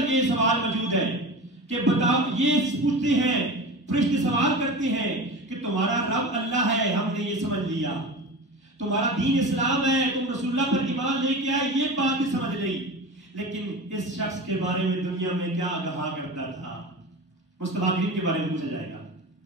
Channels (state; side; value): normal; both; correlation 0.30